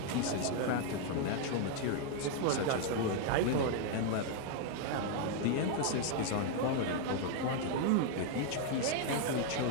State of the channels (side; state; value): both; different; correlation 0.00